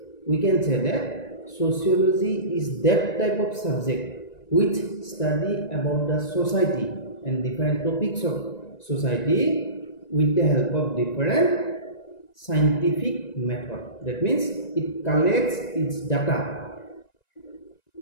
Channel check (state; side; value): late; right; 1.9 ms